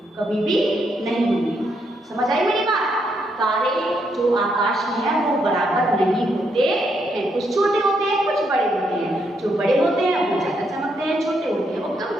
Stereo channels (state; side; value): normal; both; correlation 0.77